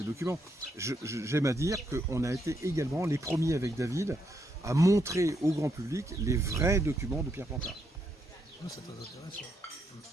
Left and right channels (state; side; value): normal; both; correlation 0.78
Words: documents. J'aime à dire qu'on a été également les premiers avec David à montrer au grand public les vrais documents de Pierre Pontard. C'est très intéressant.